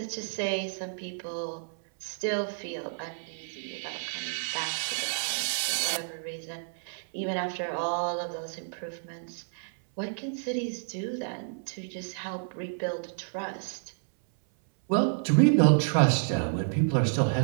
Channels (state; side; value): silent; left; 58 dB below the other